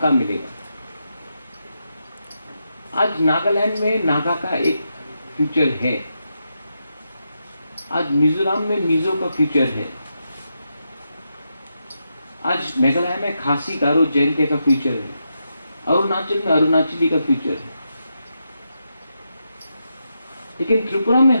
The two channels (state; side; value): inverted; both; correlation -0.85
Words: मिलेगा। आज नागालैंड में नागा का एक फ्यूचर है, आज मिजोरम में मिजो का फ्यूचर है, आज मेघालय में खासी गारो जयंती का फ्यूचर है, अरुणाचल में अरुणाचली का फ्यूचर है। लेकिन त्रिपुरा में